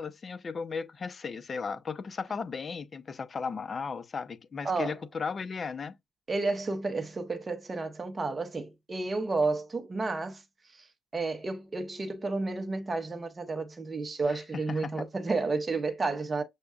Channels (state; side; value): normal; both; correlation 0.89